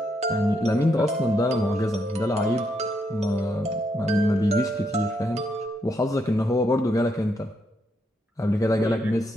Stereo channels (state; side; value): normal; both; correlation 0.78